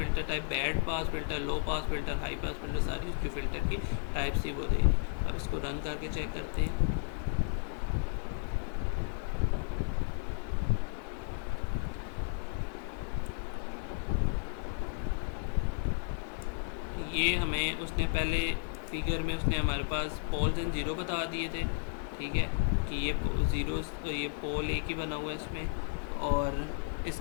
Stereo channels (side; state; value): right; silent; 56 dB below the other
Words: type band pass filter, low pass filter, high pass filter, सारी जो फ़िल्टर की टाइप्स थी वो दे दी। अब इसको रन करके चेक करते हैं। ये हमें उसने पहले फिगर में उसने हमारे पास पोल्स एंड ज़ीरो बता दिए थे, ठीक है, कि ये ज़ीरो, ये पोल एक ही बना हुआ है इसमें। और